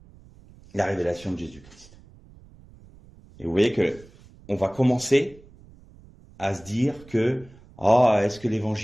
révélation de Jésus-Christ. Et vous voyez que on va commencer à se dire que est-ce que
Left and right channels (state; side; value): noise; right; rumble, 24 dB below the sound